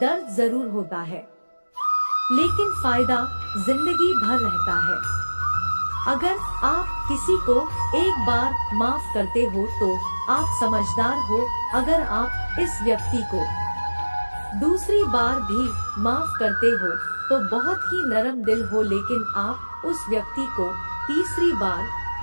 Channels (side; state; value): both; inverted; correlation -1.00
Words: जरूर होता है, लेकिन फायदा जिंदगी भर रहता है। अगर आप किसी को एक बार माफ करते हो तो आप समझदार हो। अगर आप इस व्यक्ति को दूसरी बार भी माफ करते हो तो बहुत ही नरम दिल हो, लेकिन आप उस व्यक्ति को तीसरी बार